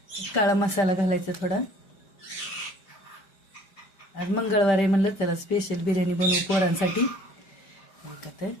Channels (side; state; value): right; late; 5.2 ms